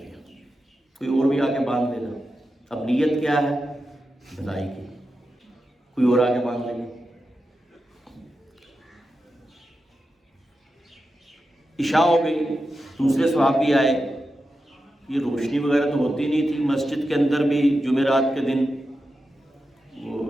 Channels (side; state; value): both; normal; correlation 0.90